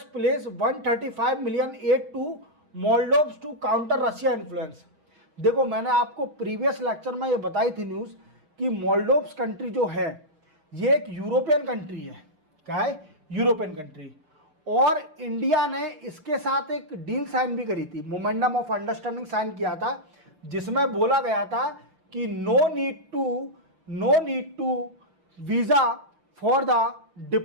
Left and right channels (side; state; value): left; late; 6.5 ms